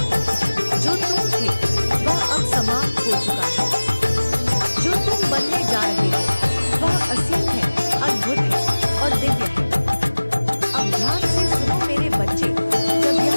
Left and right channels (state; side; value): inverted; both; correlation -1.00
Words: जो तुम थे वह अब समाप्त हो चुका है। जो तुम बनने जा रहे हो वह असीम है, अद्भुत है और दिव्य है। अब ध्यान से सुनो मेरे बच्चे, जब यह